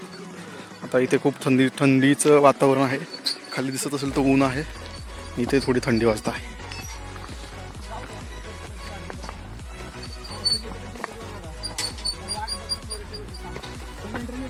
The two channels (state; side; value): identical; both; correlation 1.00